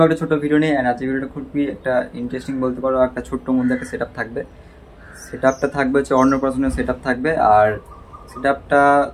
একটা ছোট ভিডিও নিয়ে। এন্ড আজকের ভিডিওটা খুবই একটা ইন্টারেস্টিং বলতে পারো। একটা ছোট্ট মধ্যে একটা সেটআপ থাকবে। সেটআপটা থাকবে হচ্ছে অন্নপ্রাশনের সেটআপ থাকবে। আর সেটআপটা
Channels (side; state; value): both; identical; correlation 1.00